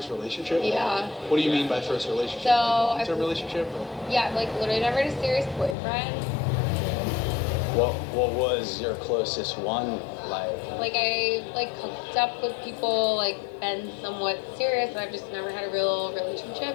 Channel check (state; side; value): drops out; right; at 5.8 s